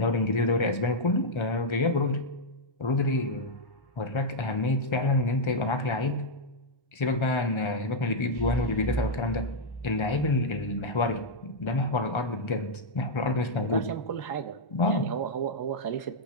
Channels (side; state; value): right; late; 1.3 ms